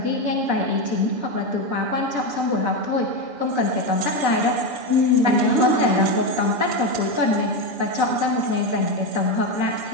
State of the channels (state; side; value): late; left; 7.0 ms